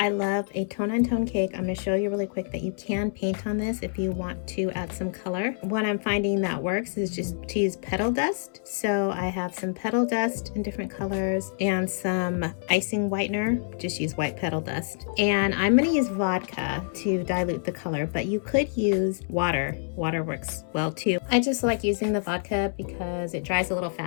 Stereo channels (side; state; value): right; silent; 60 dB below the other